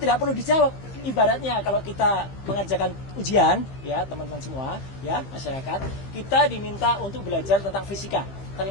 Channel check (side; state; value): right; late; 15 ms